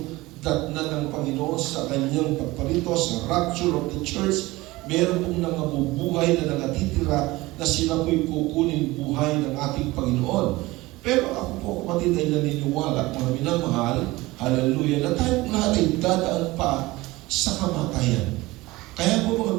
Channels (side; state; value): left; quieter; 20.1 dB